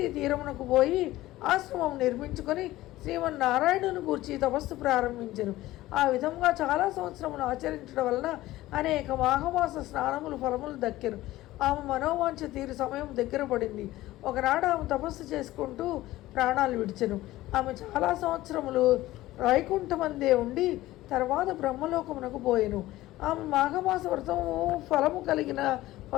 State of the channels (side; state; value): right; quieter; 16.6 dB